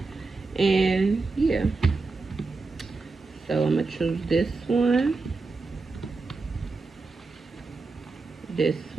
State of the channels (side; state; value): left; quieter; 3.9 dB